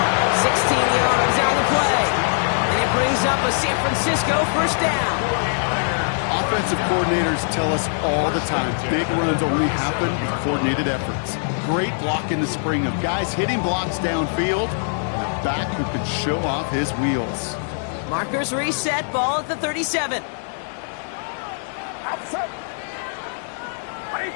16 yards on the play. And it brings up a San Francisco 1st down. Offensive coordinators tell us all the time, big runs only happen with coordinated efforts. Great block in the spring of guys hitting blocks downfield, and a back who can show off his wheels. Markers reset, ball at the 37. Outside.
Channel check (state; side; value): silent; right; digital silence